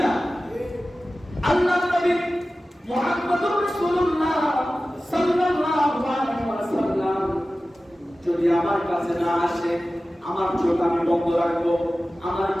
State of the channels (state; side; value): normal; both; correlation 0.95